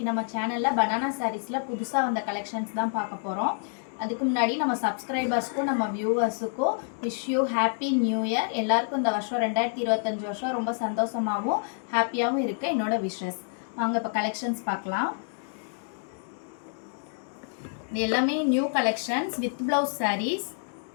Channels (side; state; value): right; silent; 59 dB below the other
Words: நம்ம சேனல்ல banana sareesல புதுசா வந்த கலெக்ஷன்ஸ் தான் பார்க்க போறோம். அதுக்கு முன்னாடி நம்ம சப்ஸ்கிரைபர்ஸ்க்கும் நம்ம வியூவர்ஸ்க்கும் wish you happy new year. எல்லாருக்கும் இந்த வருஷம் 2025 வருஷம் ரொம்ப சந்தோஷமாகவும் ஹாப்பியாகவும் இருக்க என்னோட விஷஸ். வாங்க இப்போ கலெக்ஷன்ஸ் பார்க்கலாம். இது எல்லாமே new collections with blouse sarees.